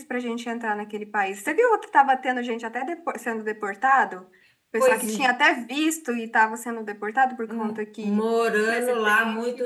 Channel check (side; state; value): both; identical; correlation 1.00